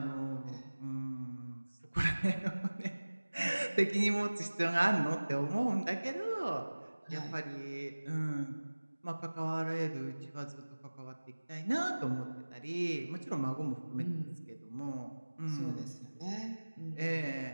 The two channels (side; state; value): both; inverted; correlation -1.00